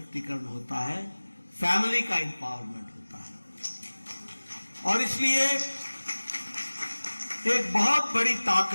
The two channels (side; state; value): both; inverted; correlation -1.00